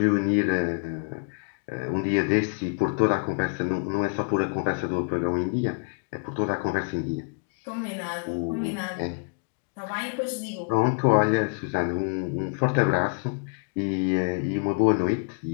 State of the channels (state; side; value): quieter; right; 37.1 dB